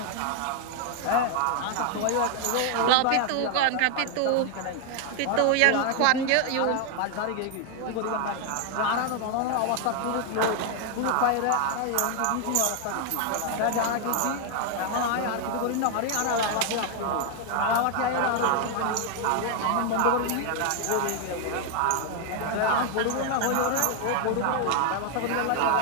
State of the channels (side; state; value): both; different; correlation 0.00